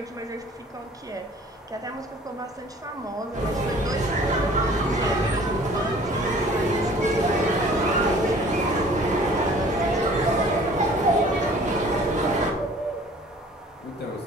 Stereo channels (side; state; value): both; normal; correlation 0.51